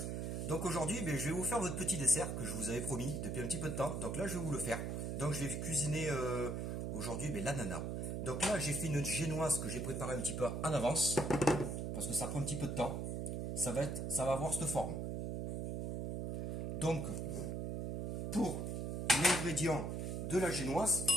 Donc aujourd'hui, je vais vous faire votre petit dessert que je vous avais promis depuis un petit peu de temps. Donc là, je vais vous le faire. Donc je vais cuisiner aujourd'hui l'ananas. Donc là, j'ai fait une génoise que j'ai préparée un petit peu en avance. Parce que ça prend un petit peu de temps. Ça va avoir cette forme. Donc, pour l'ingrédient de la génoise,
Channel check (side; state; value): right; noise; hum, 3 dB below the sound